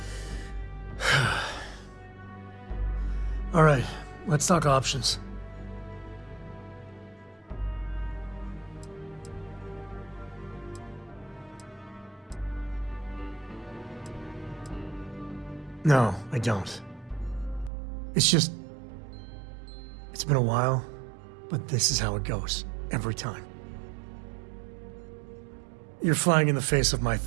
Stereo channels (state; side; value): drops out; left; at 17.7 s